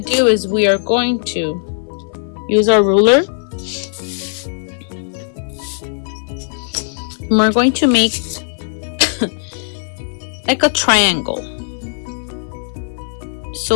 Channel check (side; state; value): right; silent; 57 dB below the other